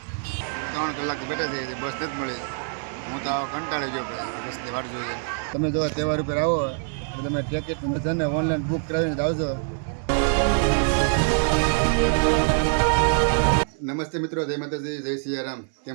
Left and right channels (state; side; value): silent; left; 62 dB below the other